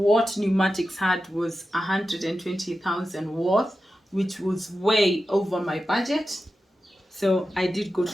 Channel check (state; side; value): normal; both; correlation 0.92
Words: Pneumatics had was 120,000 worth, which was way over my budget. So I did go